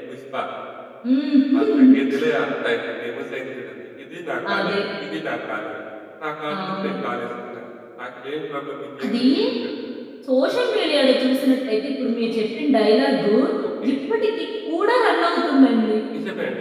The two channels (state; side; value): identical; both; correlation 1.00